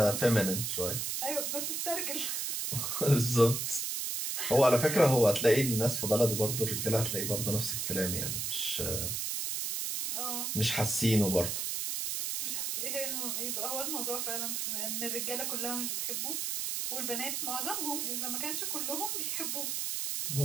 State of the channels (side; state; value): right; noise; hiss, 1 dB below the sound